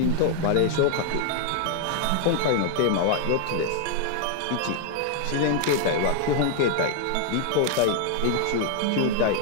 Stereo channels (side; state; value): both; different; correlation 0.00